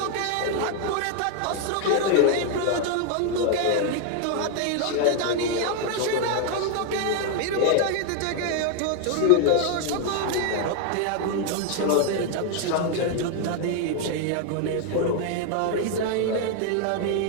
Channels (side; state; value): both; different; correlation 0.00